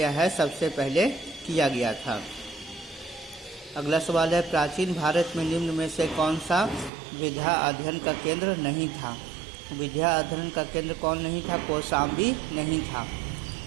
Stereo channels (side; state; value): left; drops out; at 6.9 s